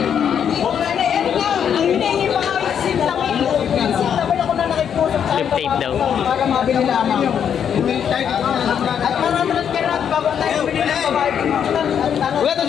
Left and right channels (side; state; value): right; quieter; 8.3 dB